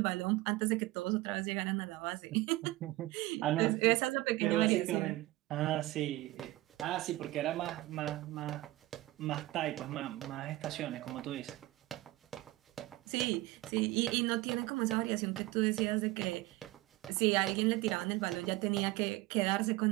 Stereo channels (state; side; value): quieter; left; 18.3 dB